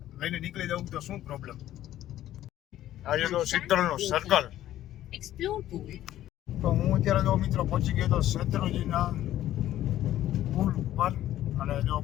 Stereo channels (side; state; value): right; quieter; 13.1 dB